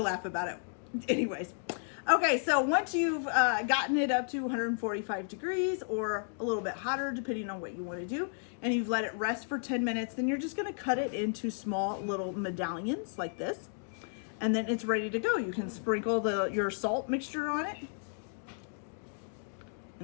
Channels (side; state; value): right; silent; digital silence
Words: laugh about it. Anyways. Okay, so once you've gotten it up to 145 degrees or a little bit hotter, depending on what you want to do, and you've let it rest for 10 minutes, then you're just going to cut it into small little medallions like this, and then it's ready to go. You can sprinkle your salt mixture on it.